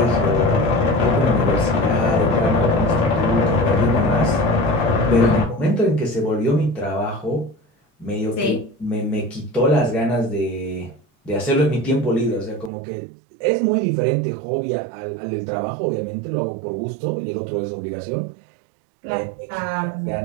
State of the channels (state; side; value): drops out; left; at 12.7 s